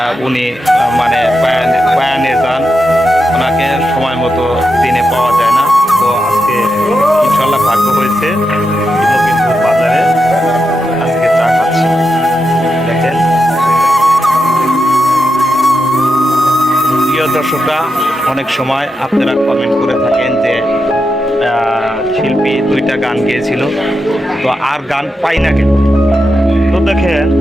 উনি মানে বয়ানে যান, ওনাকে সময় মতো দিনে পাওয়া যায় না। তো আজকে ইনশাল্লাহ ভাগ্য হয়েছে লখিমপুর বাজারে আজকে চা খাচ্ছি। দেখেন প্রিয় দর্শকরা, অনেক সময় আপনারা কমেন্ট করে থাকেন যে শিল্পী 2টা গান গেয়েছিল, তো আর গান পাই না কেন। তো দেখেন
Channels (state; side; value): normal; both; correlation 0.87